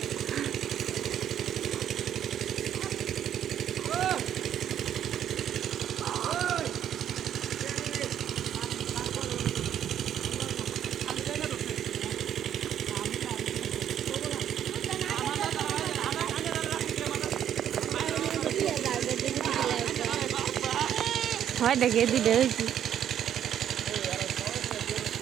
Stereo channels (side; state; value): left; quieter; 10.0 dB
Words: হয় দেখে দিলে হয়েছি।